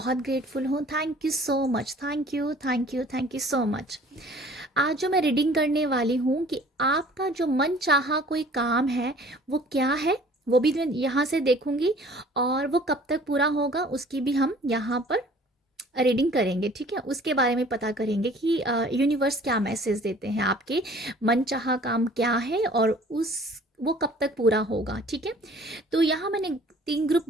ग्रेटफुल हूँ। Thank you so much, thank you thank you thank you so much. आज जो मैं रीडिंग करने वाली हूँ कि आपका जो मन चाहा कोई काम है वो क्या है, वो भी मैं यहाँ से देखूंगी और वो कब तक पूरा होगा उसकी भी हम यहाँ पर रीडिंग करेंगे। ठीक है, उसके बारे में पता करेंगे कि यूनिवर्स क्या मैसेज देते हैं, आपके मनचाहा काम क्या है और उस वो कब तक पूरा होगा। ठीक है, तो यहाँ मैंने 3 ग्रुप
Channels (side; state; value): both; normal; correlation 0.51